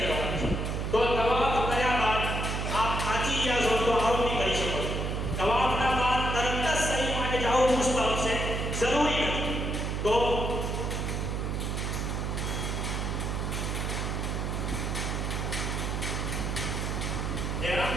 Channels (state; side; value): noise; right; hum, 1 dB below the sound